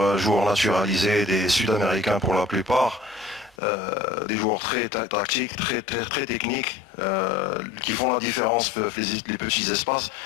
joueurs naturalisés, des Sud-Américains pour la plupart, des joueurs très tactiques, très techniques, qui font la différence dans les petits espaces.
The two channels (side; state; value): right; drops out; at 3.6 s